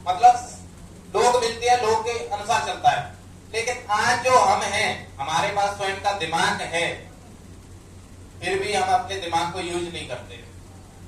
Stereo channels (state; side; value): identical; both; correlation 1.00